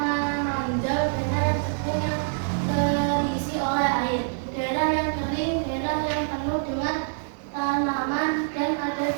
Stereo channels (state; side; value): silent; left; 61 dB below the other